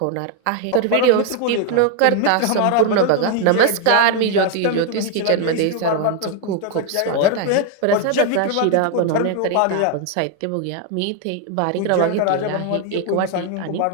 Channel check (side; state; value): both; different; correlation 0.01